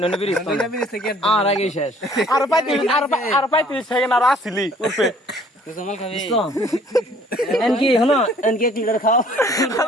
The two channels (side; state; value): both; normal; correlation 0.57